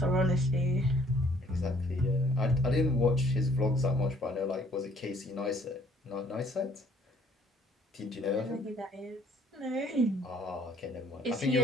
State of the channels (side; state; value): both; normal; correlation 0.61